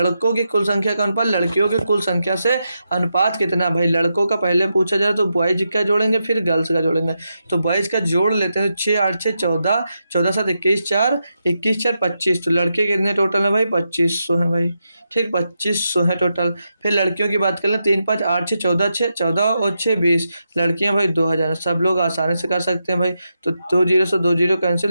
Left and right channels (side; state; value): both; inverted; correlation -0.86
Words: की कुल संख्या का अनुपात लड़कियों की कुल संख्या से अनुपात कितना। भाई लड़कों का पहले पूछा जाए तो बॉयज का जोड़ेंगे फिर गर्ल्स का जोड़ेंगे। तो बॉयज का जोड़ लेते हैं, 6 8 6 14, 14 7 21 4, 21 4 25। तो लड़के कितने टोटल है भाई, 2500 है भाई। ठीक, 2500 है टोटल। फिर लड़कियों की बात कर लें, 3 5 8 6 14, 6 14 और 6 20। लड़कियां भाई 2000। सब लोग आसानी से कर सकते हैं भाई। तो 2 जीरो से 2 जीरो